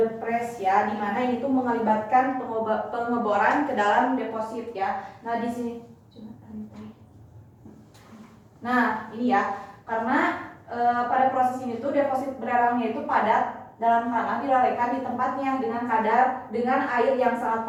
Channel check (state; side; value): identical; both; correlation 1.00